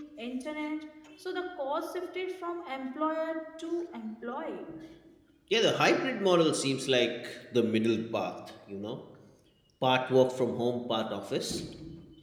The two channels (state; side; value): identical; both; correlation 1.00